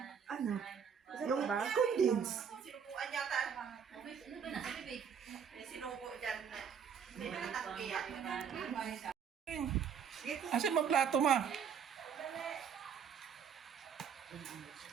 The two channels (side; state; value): left; quieter; 7.3 dB